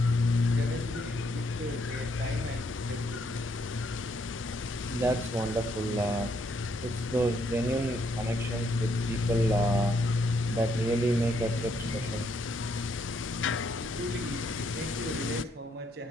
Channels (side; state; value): both; normal; correlation 0.73